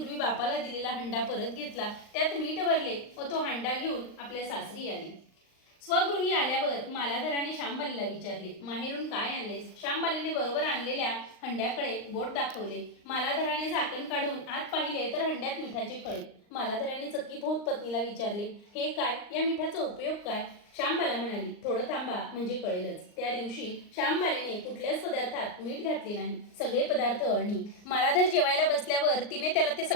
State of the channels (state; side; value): late; right; 39 ms